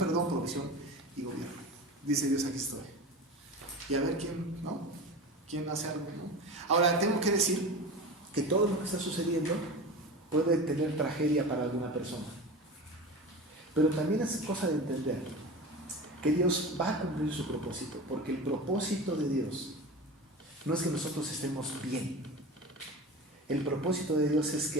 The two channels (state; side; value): normal; both; correlation 0.30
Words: y gobierno. Dice Dios, aquí estoy. Y a ver quién, ¿no? ¿Quién hace algo, ¿no? Ahora, tengo que decir que todo lo que está sucediendo puede tener tragedia para alguna persona. Pero también es cosa de entender que Dios va a cumplir su propósito, porque el propósito de Dios no es que nosotros estemos bien. El propósito de Dios es